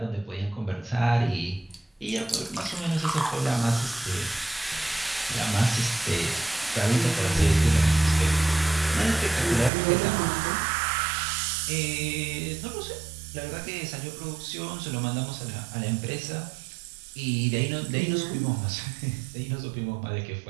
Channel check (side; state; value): left; drops out; at 9.7 s